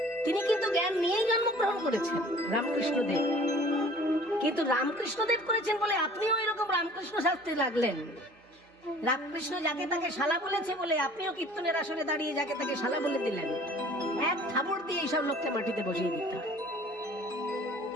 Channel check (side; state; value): both; normal; correlation 0.49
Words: তিনি কিন্তু জ্ঞান নিয়েই জন্মগ্রহণ করেছেন রামকৃষ্ণদেব। কিন্তু রামকৃষ্ণদেব করেছেন বলে আপনিও এরকম রামকৃষ্ণ শাস্ত্রে লাগলেন। রামকৃষ্ণ যাকে তাকে শালা বলেছে বলে আপনিও কীর্তনের আসরে দাঁড়িয়ে যাকে তাকে শালা বলে দিলেন। এক থাবড় দিয়ে এইসব লোককে মাটিতে বসিয়ে দিতে হয়।